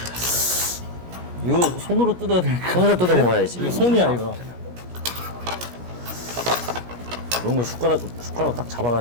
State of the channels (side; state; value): left; late; 17 ms